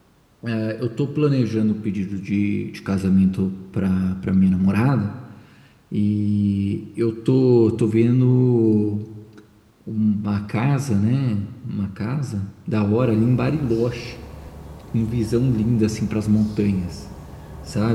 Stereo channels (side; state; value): both; identical; correlation 1.00